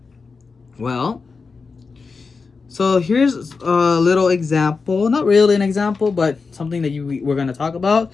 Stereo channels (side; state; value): right; quieter; 4.7 dB